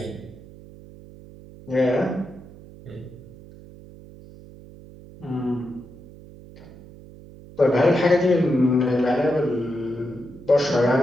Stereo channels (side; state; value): right; noise; hum, 19 dB below the sound